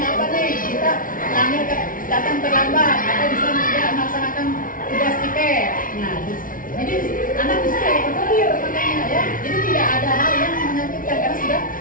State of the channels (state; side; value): late; right; 0.39 ms